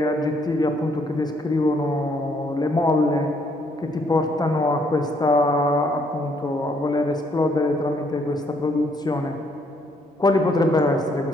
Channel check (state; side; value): normal; both; correlation 0.69